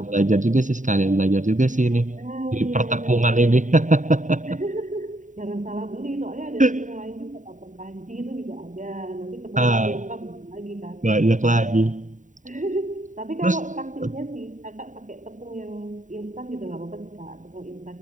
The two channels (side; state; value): left; late; 0.36 ms